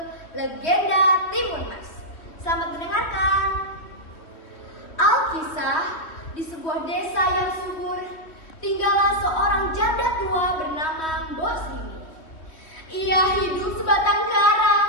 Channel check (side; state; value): right; late; 2.9 ms